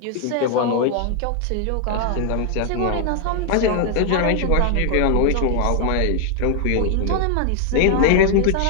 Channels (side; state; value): both; different; correlation 0.00